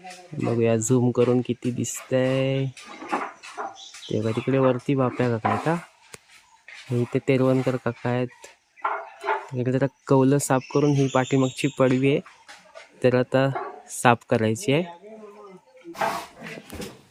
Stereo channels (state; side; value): identical; both; correlation 1.00